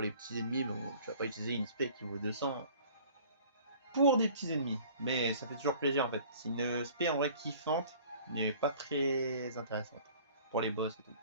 les petits ennemis, bon, tu vas pas utiliser une spé qui vaut 200 pour des petits ennemis. Mais ça fait toujours plaisir en fait. C'est une spé en vrai kiffante, mais pas très intéressante pour les boss et tout.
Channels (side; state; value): both; inverted; correlation -0.50